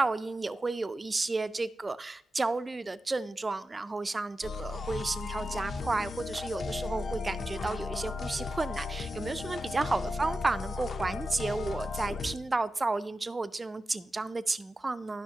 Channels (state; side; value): normal; both; correlation 0.91